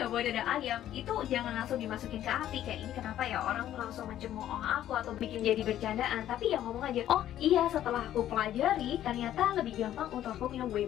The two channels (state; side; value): quieter; right; 12.0 dB